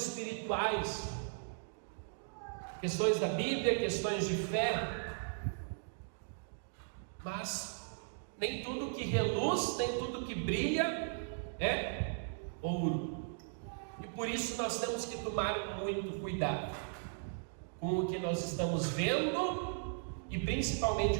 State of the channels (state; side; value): silent; left; digital silence